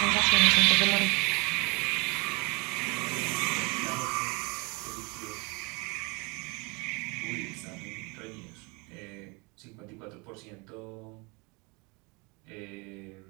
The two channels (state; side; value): quieter; left; 28.9 dB